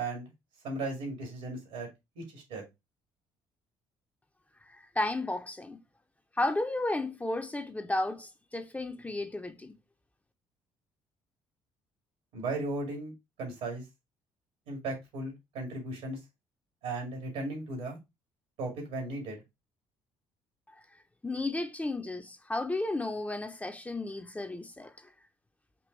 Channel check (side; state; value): both; normal; correlation 0.73